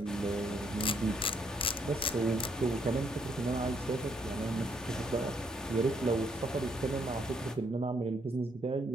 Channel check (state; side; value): normal; both; correlation 0.71